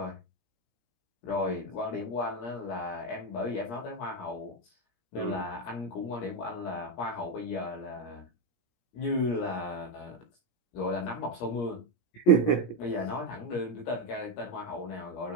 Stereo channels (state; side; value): late; right; 17 ms